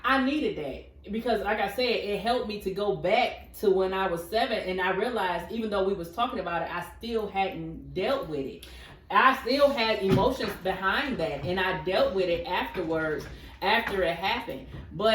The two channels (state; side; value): identical; both; correlation 1.00